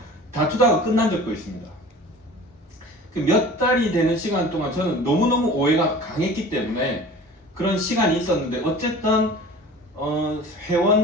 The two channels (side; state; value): both; normal; correlation 0.42